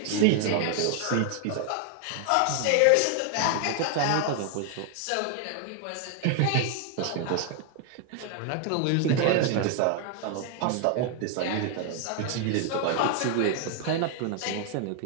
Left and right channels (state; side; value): different; both; correlation 0.00